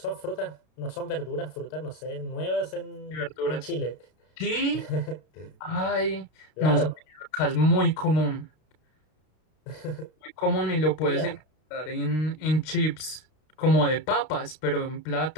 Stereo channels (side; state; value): right; late; 33 ms